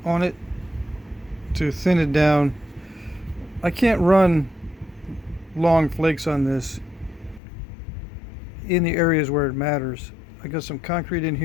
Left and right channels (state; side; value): drops out; right; at 7.4 s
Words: on it to thin it down. I can't run long flakes on this in the areas where it matters. I got some concrete in